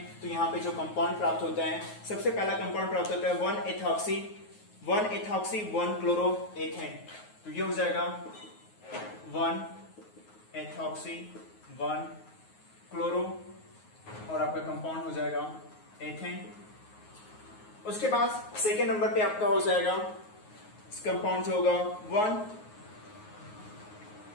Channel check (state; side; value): late; right; 9.4 ms